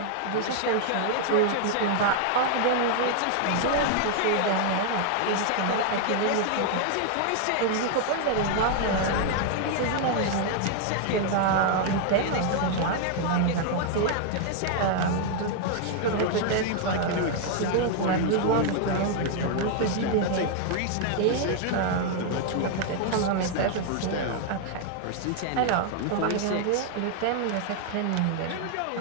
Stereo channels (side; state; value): both; different; correlation 0.00